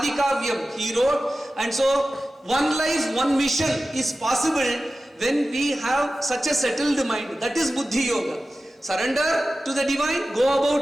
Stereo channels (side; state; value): both; normal; correlation 0.95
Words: Kavyam, he wrote. And so, one life, one mission is possible when we have such a settled mind. That is Buddhi Yoga. Surrender to the divine, go